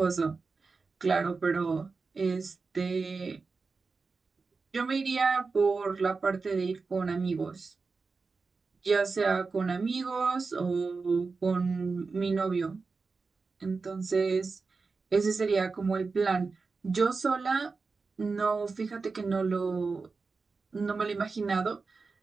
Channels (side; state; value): left; quieter; 4.4 dB